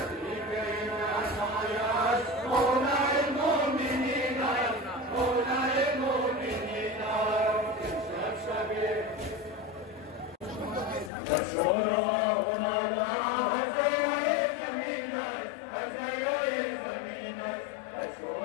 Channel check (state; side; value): drops out; right; at 11.1 s